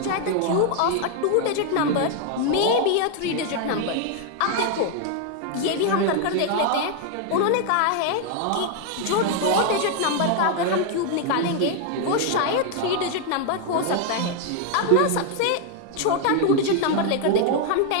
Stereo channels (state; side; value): different; both; correlation 0.00